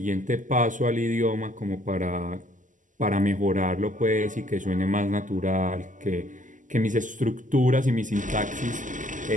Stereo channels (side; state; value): left; late; 0.37 ms